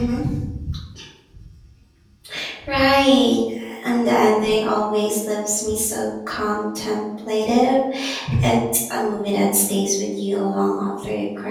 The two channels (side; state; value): both; identical; correlation 1.00